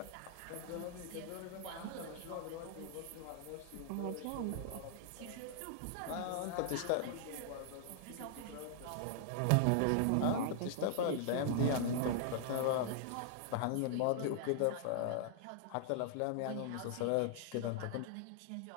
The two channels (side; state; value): both; different; correlation -0.01